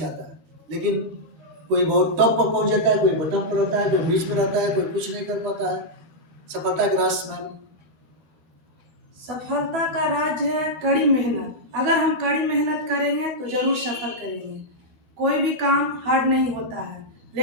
लेकिन कोई बहुत टॉप पर पहुंच जाता है, कोई बटन पर रहता है, कोई बीच में रहता है, कोई कुछ नहीं कर पाता है। सफलता का राज मैम? सफलता का राज है कड़ी मेहनत। अगर हम कड़ी मेहनत करेंगे तो जरूर सफल करेंगे। कोई भी काम हार्ड नहीं होता है,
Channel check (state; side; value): late; left; 13 ms